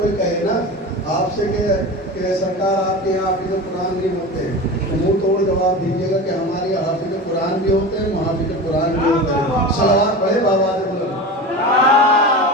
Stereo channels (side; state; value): both; normal; correlation 0.29